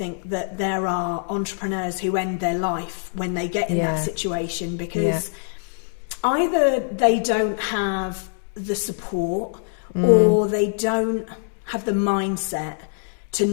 that there are entrepreneurs who end their life when they get in that situation, because either they don't have the support or they don't have the mindset to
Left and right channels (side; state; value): right; silent; digital silence